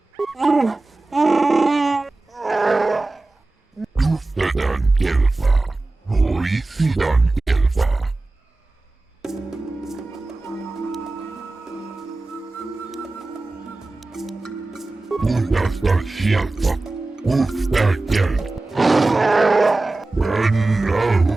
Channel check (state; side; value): quieter; left; 3.1 dB